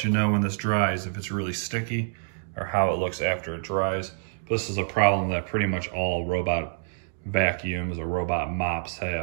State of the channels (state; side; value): silent; left; digital silence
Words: you know when this dries if it's really sticky or how it looks after it dries. This is a problem that pretty much all robot vacuums or robot mops